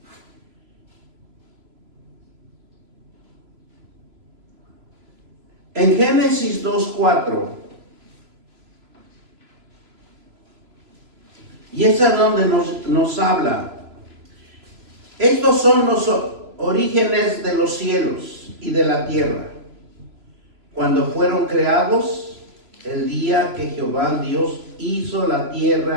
En Génesis 2:4, y es a donde nos habla, estos son los orígenes de los cielos y de la tierra, cuando fueron creados, el día que Jehová Dios hizo la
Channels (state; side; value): late; left; 3.0 ms